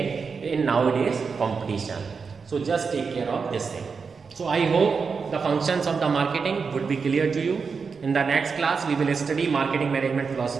in nowadays competition. So just take care of this thing. So I hope the functions of the marketing would be clear to you. In the next class, we will study marketing management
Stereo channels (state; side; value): quieter; left; 5.3 dB